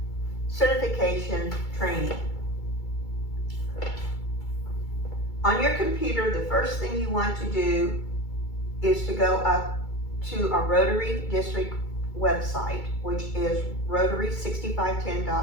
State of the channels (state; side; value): late; right; 2.3 ms